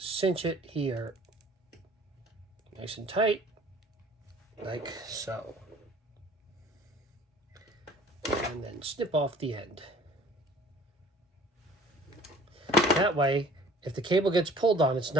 it here nice and tight, like so. And then snip off the end. That way, if the cable gets pulled on, it's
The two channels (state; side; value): normal; both; correlation 0.51